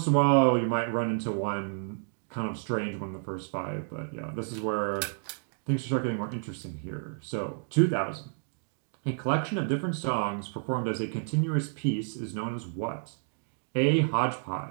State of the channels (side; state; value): left; silent; 58 dB below the other